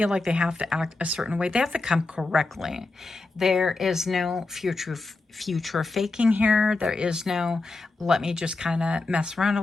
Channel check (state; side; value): quieter; right; 3.4 dB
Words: like they have to act a certain way. They have to come correctly. There is no future faking here. There is no, let me just kind of mess around